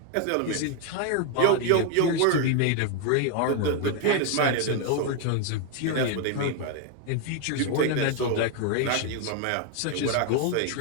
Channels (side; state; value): both; different; correlation 0.01